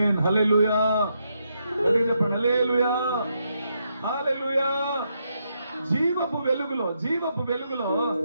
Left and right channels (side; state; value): both; inverted; correlation -0.80